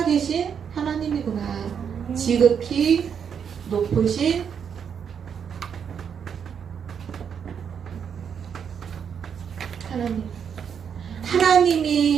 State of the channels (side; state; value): left; quieter; 7.4 dB